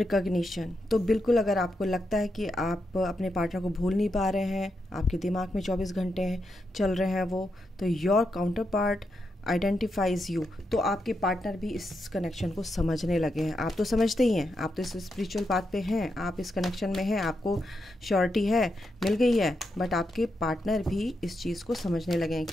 तो बिल्कुल अगर आपको लगता है कि आप अपने पार्टनर को भूल नहीं पा रहे हैं, आपके दिमाग में 24 घंटे चल रहे हैं वो, तो your counter part identifies you. तो आपके पार्टनर भी इस कनेक्शन को समझने लगे हैं। आप तो समझते ही हैं, आप तो इस स्पिरिचुअल पाथ पे हैं, आप इस कनेक्शन में हैं, आपको श्योरिटी है, मिल गई है। बट आपके पार्टनर भी इस चीज़ को समझने लगे हैं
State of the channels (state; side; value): normal; both; correlation 0.84